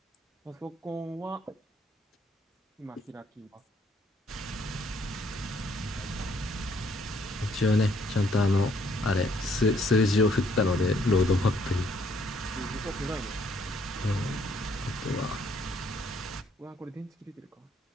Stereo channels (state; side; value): normal; both; correlation 0.66